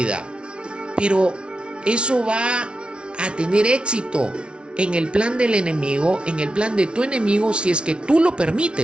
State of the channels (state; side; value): late; left; 0.058 ms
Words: Pero eso va a tener éxito en el plan del enemigo, en el plan de tu enemigo, si es que tú lo